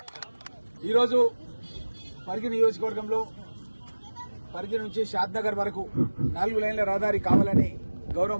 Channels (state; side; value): inverted; both; correlation -1.00